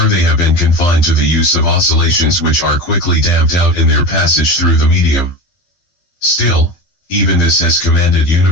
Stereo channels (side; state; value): right; late; 12 ms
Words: they have been confined to the use of oscillations which are quickly damped out in their passage through the medium. Still, even this has commanded